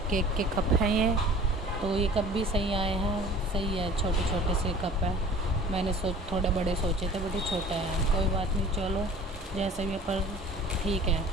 के कप हैं ये, तो ये कप भी सही आए हैं, सही है, छोटे छोटे से कप है। मैंने थोड़े बड़े सोचे थे, बट ये छोटा है, कोई बात नहीं, चलो जैसे भी, पर ठीक है।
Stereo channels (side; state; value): both; normal; correlation 0.47